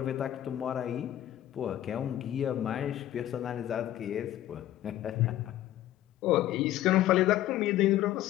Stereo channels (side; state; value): right; quieter; 13.2 dB